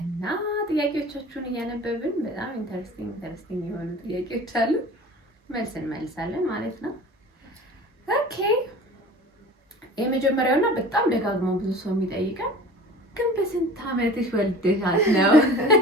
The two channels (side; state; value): both; normal; correlation 0.41